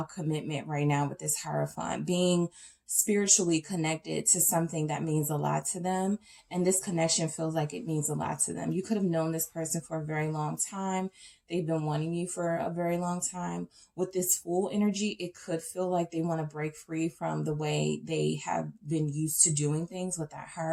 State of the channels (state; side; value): identical; both; correlation 1.00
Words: commitment right now with this Hierophant, being spiritually connected to something that means a lot to them. And this connection feels like it means a lot to them. You could have known this person for a very long time. They've been wanting you for a very long time. With this Fool energy, it could feel like they want to break free from the way they have been used to doing things with that